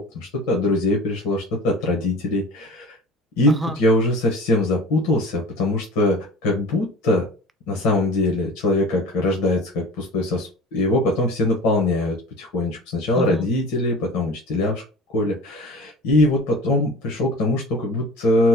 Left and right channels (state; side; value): normal; both; correlation 0.38